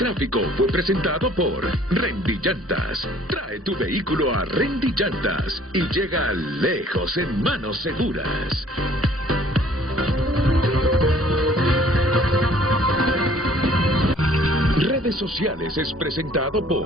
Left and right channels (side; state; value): both; normal; correlation 0.56